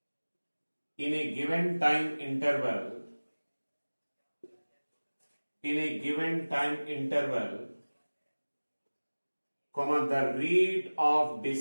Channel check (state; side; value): inverted; both; correlation -1.00